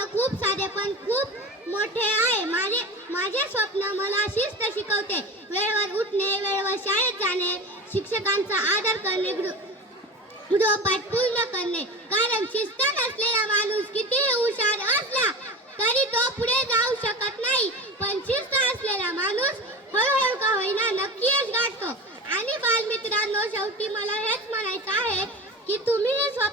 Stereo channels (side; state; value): both; normal; correlation 0.29